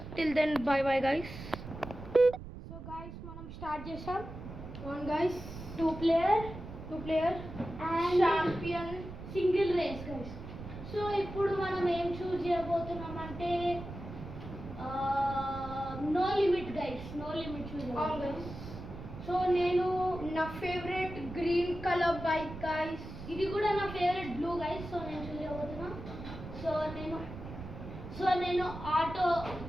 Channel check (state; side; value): noise; right; rumble, 11 dB below the sound